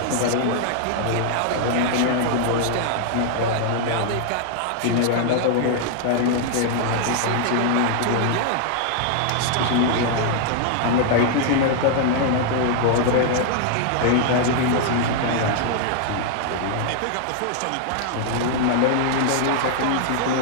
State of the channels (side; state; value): both; different; correlation 0.00